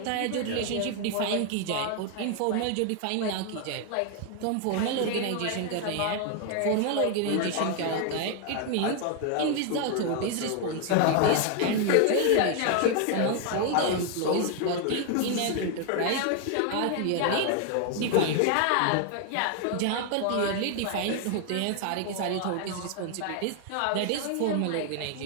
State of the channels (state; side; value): different; both; correlation 0.00